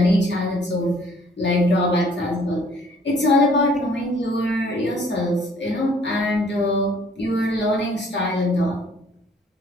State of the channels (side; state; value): both; normal; correlation 0.59